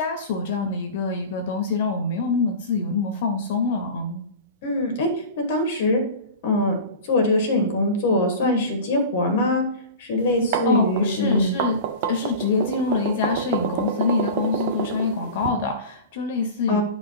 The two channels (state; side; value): inverted; both; correlation -0.33